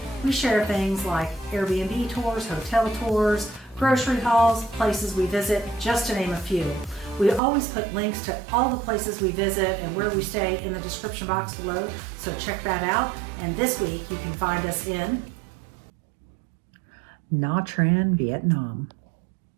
We share things like Airbnb tours, hotel tours, grocery hauls, places we visit, just to name a few. We always put links to all the places we visit and where we stay in the description box below, so check that out. And this week you can find us in Nha Trang, Vietnam.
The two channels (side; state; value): left; drops out; at 7.4 s